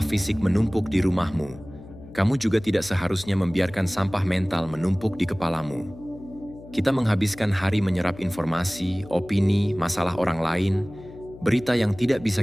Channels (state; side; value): noise; left; hum, 18 dB below the sound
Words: fisik menumpuk di rumahmu, kamu juga tidak seharusnya membiarkan sampah mental menumpuk di kepalamu. Kita menghabiskan hari menyerap informasi, opini, masalah orang lain, berita yang tidak bisa